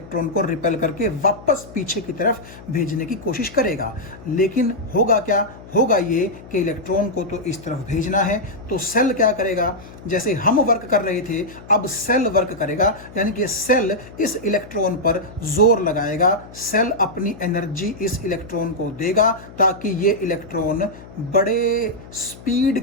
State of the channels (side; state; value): left; noise; hum, 18 dB below the sound